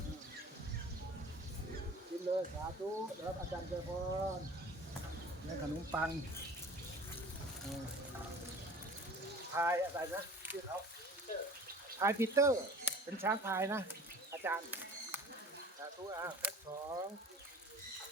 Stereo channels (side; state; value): both; normal; correlation 0.43